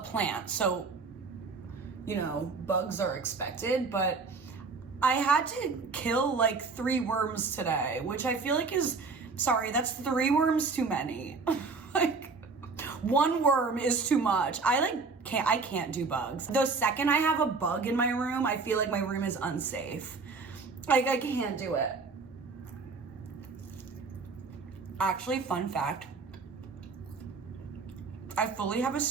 so, you know, bugs are expected, but I had to kill like 3 worms today, which I feel like is, sorry, that's 3 worms too many. Like, 1 worm is too much. I can't do bugs. The second I have a bug in my room, I feel like my room is unsafe. Like, I can't do it. Actually, fun fact, I fully have a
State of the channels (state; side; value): quieter; left; 4.4 dB